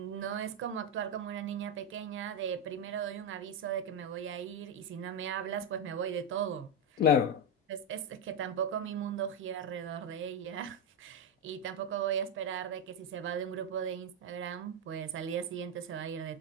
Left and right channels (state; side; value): normal; both; correlation 0.06